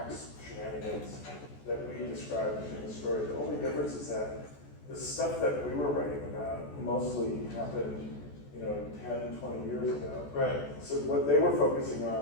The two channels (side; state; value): right; late; 14 ms